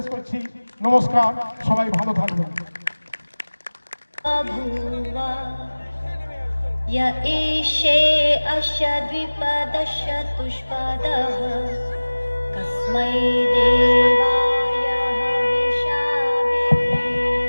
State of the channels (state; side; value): inverted; both; correlation -1.00